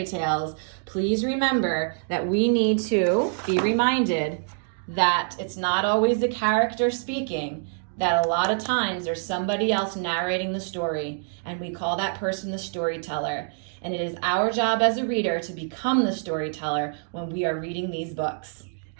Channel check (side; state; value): left; silent; 61 dB below the other